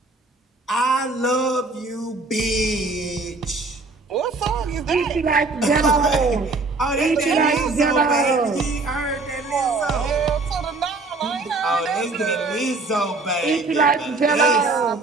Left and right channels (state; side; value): quieter; left; 3.5 dB